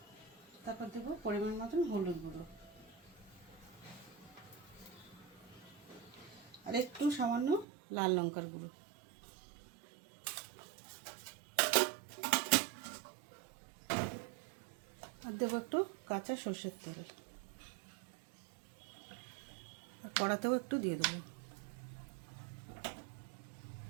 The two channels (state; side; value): drops out; left; at 7.7 s